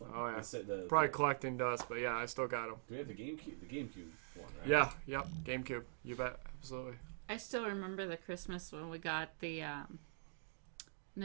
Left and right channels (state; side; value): silent; left; digital silence